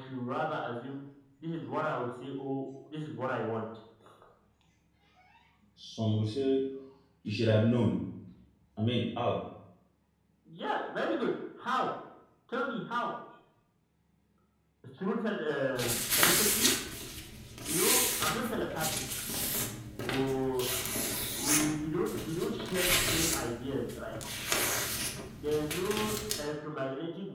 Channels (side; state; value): both; identical; correlation 1.00